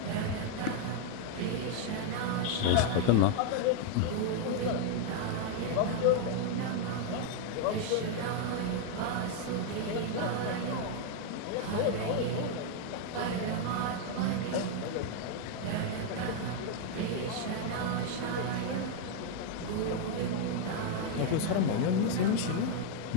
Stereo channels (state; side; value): different; both; correlation 0.00